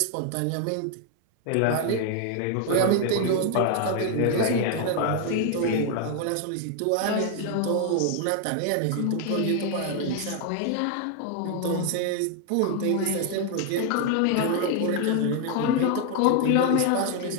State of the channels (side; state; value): both; different; correlation 0.01